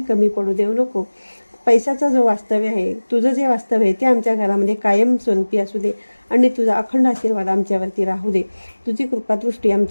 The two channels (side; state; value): both; inverted; correlation -1.00